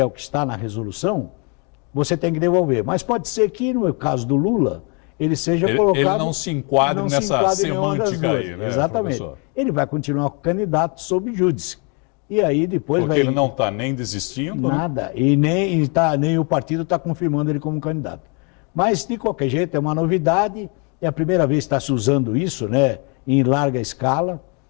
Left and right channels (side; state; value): right; quieter; 34.7 dB